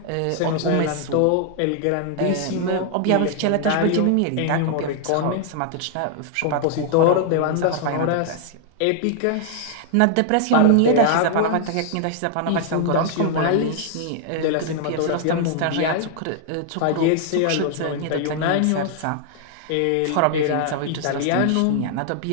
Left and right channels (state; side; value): different; both; correlation 0.00